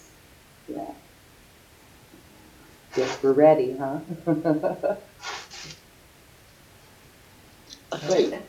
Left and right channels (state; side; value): identical; both; correlation 1.00